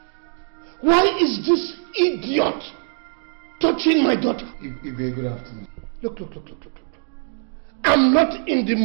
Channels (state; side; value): silent; left; 61 dB below the other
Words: Why is this idiot touching my daughter? Ibe, good afternoon. Look. I'm not in the